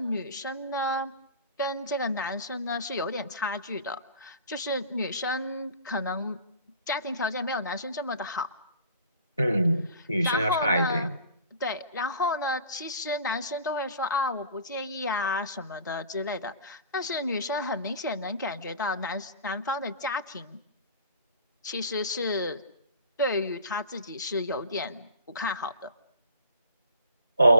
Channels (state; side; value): inverted; both; correlation -0.42